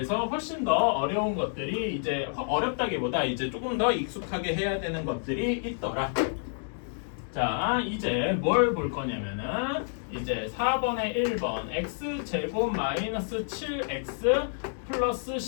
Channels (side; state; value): right; silent; digital silence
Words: 훨씬 더 어려운 것들이 이제 어렵다기보다 이제 조금 더 익숙하게 해야 되는 것들이 있더라. 자, 이제 뭘 볼 거냐면은 이제 4번에 1번 x제곱 마이너스 7x 플러스